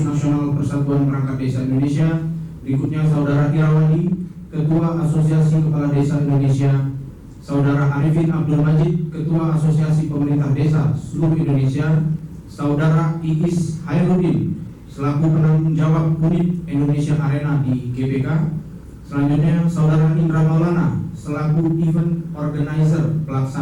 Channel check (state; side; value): identical; both; correlation 1.00